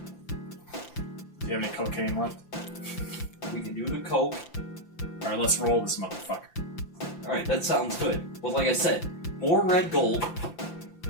you have any cocaine left? We can do the coke. Alright, let's roll this motherfucker. Alright, that sounds good. But like I said, more red gold.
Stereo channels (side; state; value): right; late; 5.8 ms